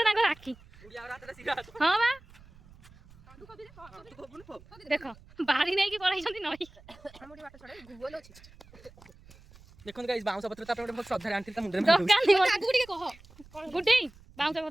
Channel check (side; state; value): right; noise; rumble, 23 dB below the sound